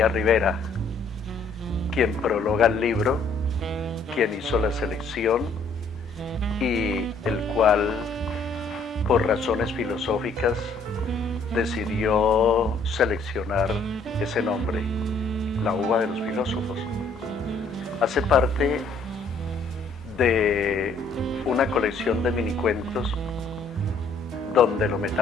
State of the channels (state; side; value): quieter; right; 3.5 dB